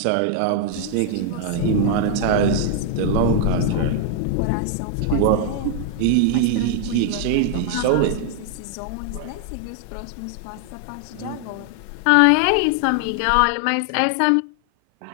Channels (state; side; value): different; both; correlation 0.00